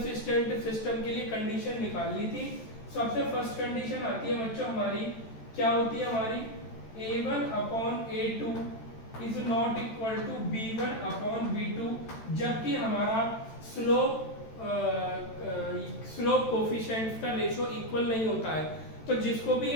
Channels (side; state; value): right; late; 13 ms